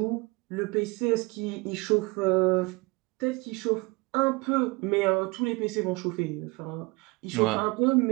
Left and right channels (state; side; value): quieter; left; 25.8 dB